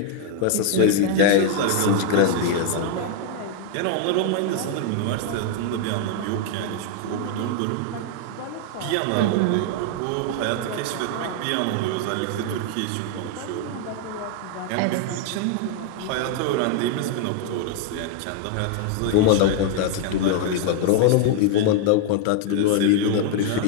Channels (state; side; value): different; both; correlation 0.00